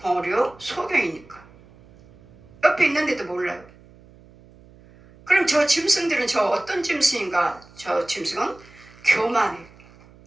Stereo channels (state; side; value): noise; right; hum, 25 dB below the sound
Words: 소경이니까. 옆에 있는데도 몰라요. 그럼 저 짐승들은 저 어떤 짐승인가? 저 짐승은 교만해.